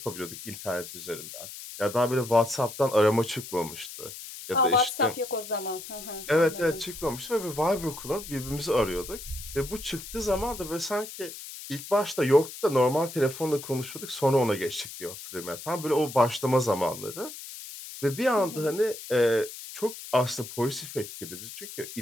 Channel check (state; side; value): noise; left; hiss, 12 dB below the sound